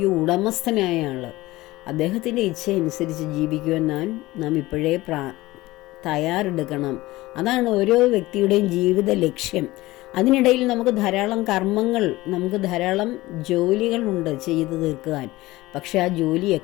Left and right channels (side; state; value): right; quieter; 18.8 dB